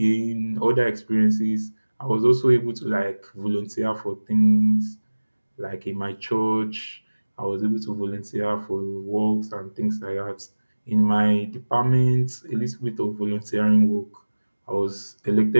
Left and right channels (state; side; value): inverted; both; correlation -1.00